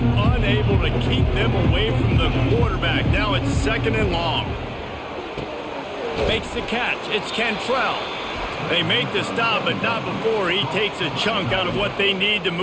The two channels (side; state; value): both; identical; correlation 1.00